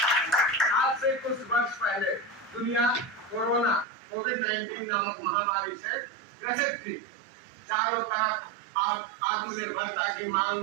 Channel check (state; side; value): drops out; left; at 3.9 s